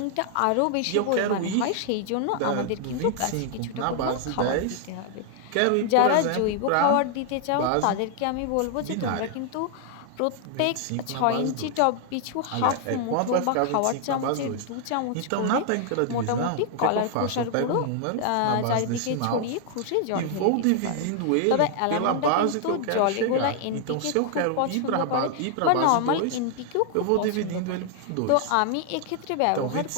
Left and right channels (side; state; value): both; different; correlation 0.00